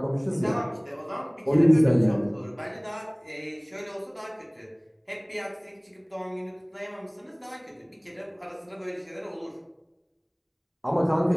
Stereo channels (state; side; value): identical; both; correlation 1.00